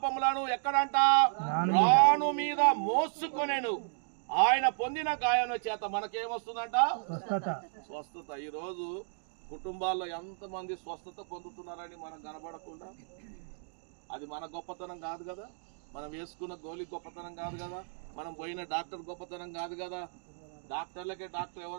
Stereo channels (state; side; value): silent; left; digital silence